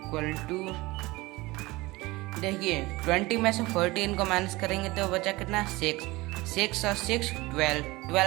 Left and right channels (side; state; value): left; quieter; 21.2 dB